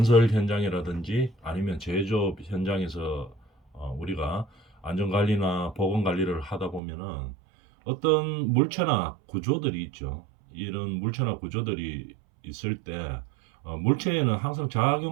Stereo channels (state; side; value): drops out; left; at 6.8 s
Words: 현장이라든지 아니면 제조업 현장에서 우리가 안전관리나 보건관리를 하다 보면은 어떤 물체나 구조들이 있죠. 이런 물체나 구조들이 있을 때 물체에는 항상